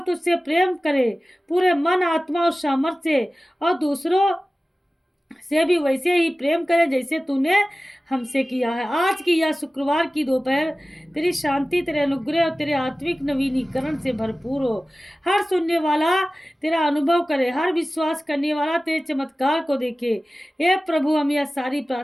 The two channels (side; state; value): both; normal; correlation 0.96